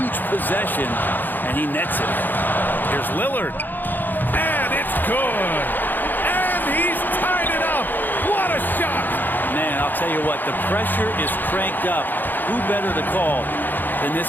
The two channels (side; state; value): right; late; 0.089 ms